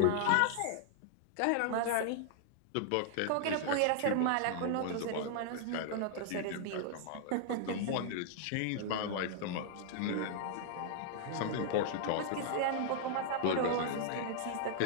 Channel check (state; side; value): different; both; correlation -0.01